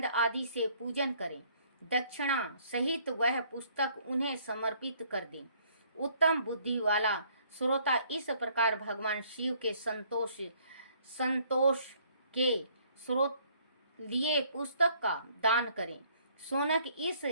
आदि से पूजन करें। दक्षिणा सहित वह पुस्तक उन्हें समर्पित कर दें। उत्तम बुद्धि वाला श्रोता इस प्रकार भगवान शिव के संतोष के स्रोत लिए पुस्तक का दान करें। शौनक इस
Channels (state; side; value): inverted; both; correlation -0.62